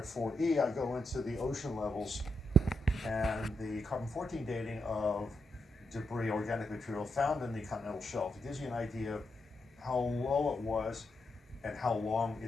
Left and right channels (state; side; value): normal; both; correlation 0.82